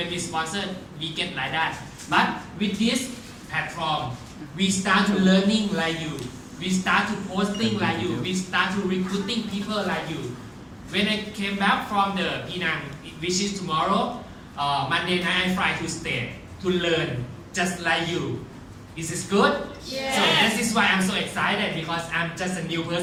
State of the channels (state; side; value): identical; both; correlation 1.00